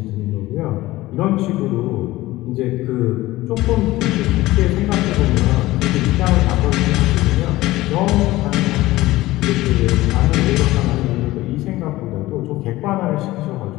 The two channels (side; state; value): right; quieter; 17.8 dB